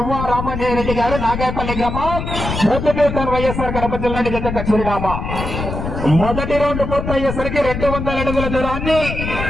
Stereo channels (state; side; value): noise; left; rumble, 5 dB below the sound